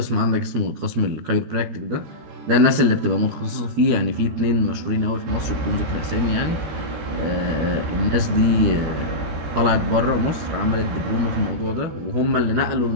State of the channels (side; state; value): left; late; 13 ms